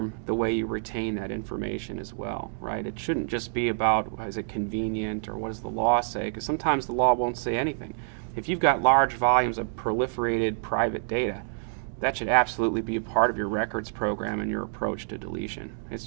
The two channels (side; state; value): left; silent; digital silence